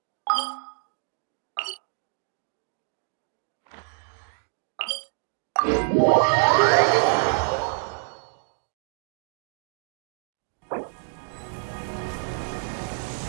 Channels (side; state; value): left; silent; digital silence